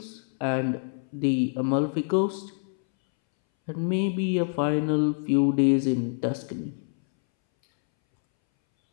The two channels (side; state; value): right; silent; 61 dB below the other